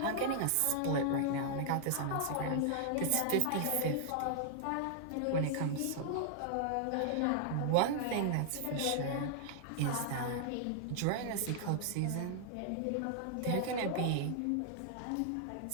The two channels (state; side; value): different; both; correlation -0.01